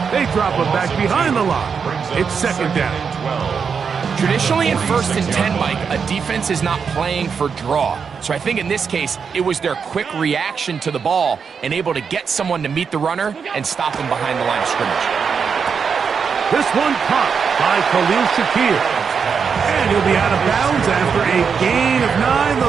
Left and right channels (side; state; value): left; quieter; 6.2 dB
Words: They drop him back behind the line. It's 2nd down. Traditionally in 1st and 10, Mike, a defense is not playing for draw. So I think in this case, it was their quick reaction to the ball and able to get someone to meet the runner and stop him behind the line of scrimmage. This one caught by Khalil Shakir. And he'll be out of bounds after a gain of 9.